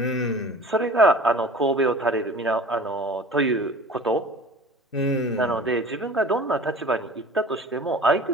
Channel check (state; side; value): normal; both; correlation 0.43